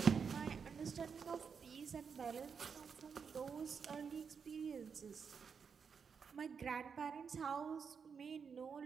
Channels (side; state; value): left; quieter; 6.2 dB